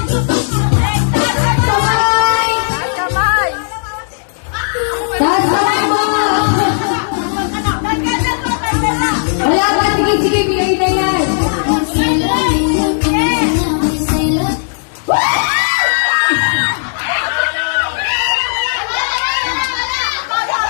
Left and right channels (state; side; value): silent; right; digital silence